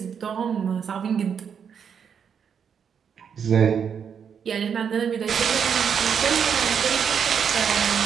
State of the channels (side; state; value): left; quieter; 7.3 dB